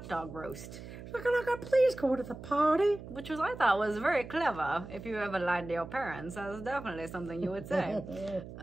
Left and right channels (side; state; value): right; noise; hum, 13 dB below the sound